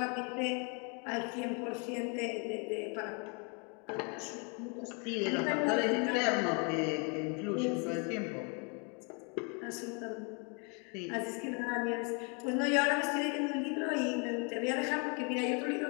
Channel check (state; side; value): quieter; right; 35.1 dB